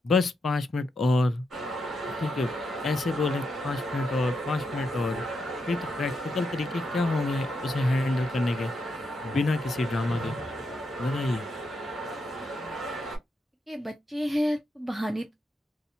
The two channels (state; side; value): normal; both; correlation 0.83